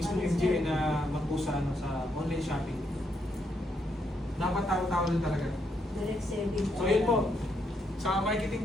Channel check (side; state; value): both; normal; correlation 0.77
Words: MGA na mag-post sa online shopping. Dapat tao-tao lang talaga. Direct selling. So yun po, sa marketing